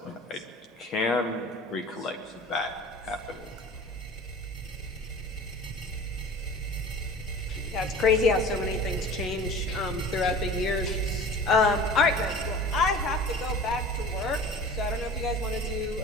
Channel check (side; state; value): both; normal; correlation 0.40